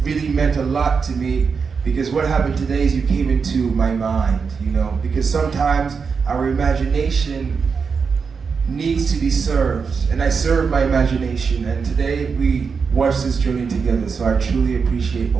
really meant a lot to me, because what happened today is you came into my mind, because sometimes our imagination needs to be served, and I serve my imagination, and today we watched this journey together, so I truly appreciate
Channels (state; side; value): quieter; left; 5.6 dB